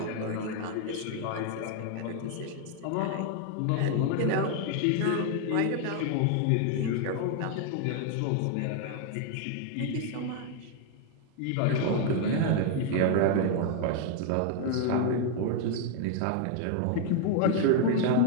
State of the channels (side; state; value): both; different; correlation 0.00